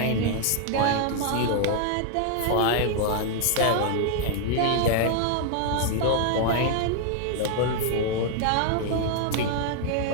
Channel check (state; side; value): different; both; correlation 0.00